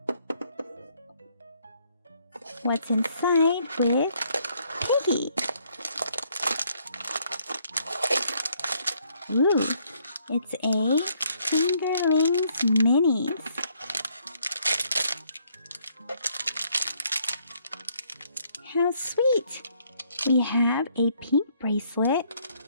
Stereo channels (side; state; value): both; inverted; correlation -0.68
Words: What's inside with Piggy? Ooh, it's a Fingerlings Minis. How sweet! We have a pink bracelet